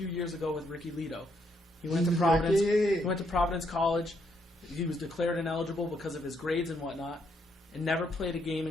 years ago with Ricky Lito. He went to Providence. He went to Providence College. He was declared ineligible because of his grades and whatnot, and never played a game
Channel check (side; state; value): both; normal; correlation 0.75